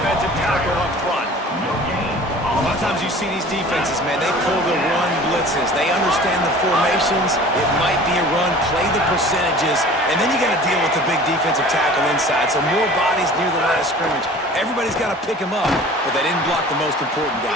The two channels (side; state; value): both; normal; correlation 0.44